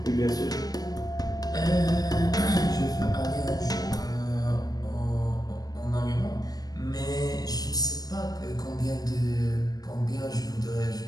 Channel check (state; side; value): late; right; 0.19 ms